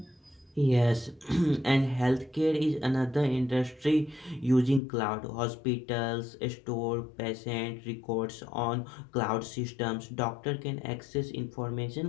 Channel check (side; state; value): right; drops out; at 4.8 s